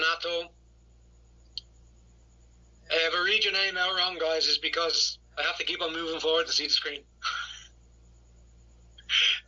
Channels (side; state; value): both; identical; correlation 1.00